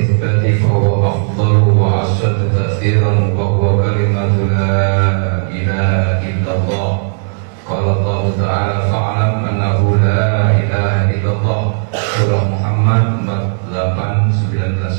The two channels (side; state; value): left; silent; digital silence